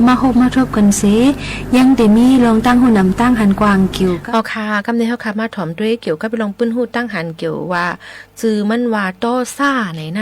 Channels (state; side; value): identical; both; correlation 1.00